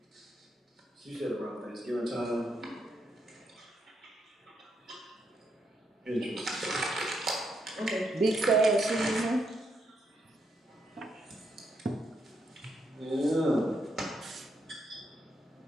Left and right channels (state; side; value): normal; both; correlation 0.79